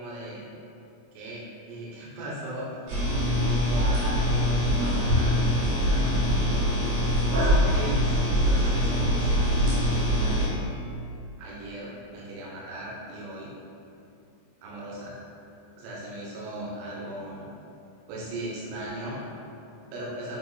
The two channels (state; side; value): late; left; 25 ms